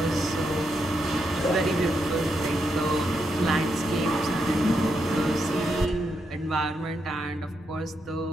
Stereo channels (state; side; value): normal; both; correlation 0.82